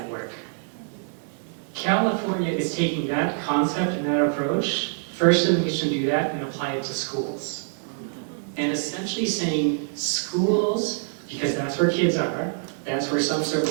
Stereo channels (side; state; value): left; silent; digital silence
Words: California is taking that concept and that approach, first in the nation to do that, and apply it to schools. And essentially saying schools, because that's where kids are, that's where some